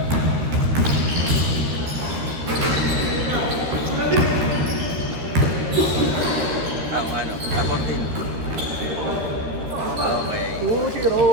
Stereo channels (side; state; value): left; late; 13 ms